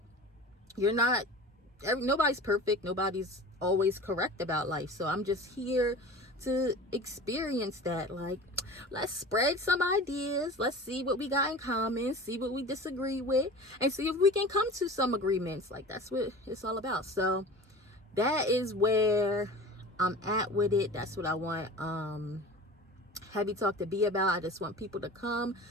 nobody's perfect. Nobody's always correct about life. So I'm just here to experience that. Like, let's spread some ideas. Let's see what we got in common, see what we disagree with, and see if we can come to some agreements. Like, that's what it's all about. So that is where I'm at with it. That's what I want Heavy Talk to be about. I just want people to come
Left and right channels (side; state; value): both; normal; correlation 0.37